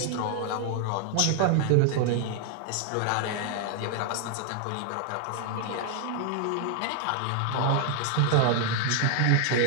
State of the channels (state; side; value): different; both; correlation 0.00